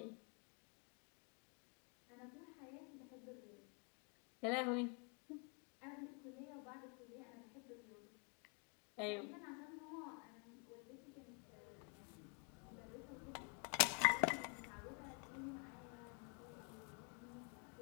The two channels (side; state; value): right; quieter; 38.2 dB